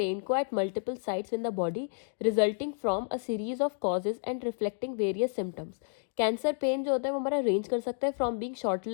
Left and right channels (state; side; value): silent; right; digital silence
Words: को at multiple sites in the body resulting from a series of causes and reflecting various symptoms. Cancer pen जो होता है वो हमारा रेंज कर सकता है फ्रॉम बीइंग शॉर्ट